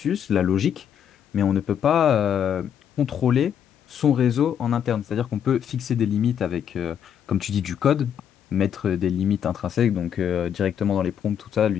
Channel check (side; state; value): right; quieter; 8.8 dB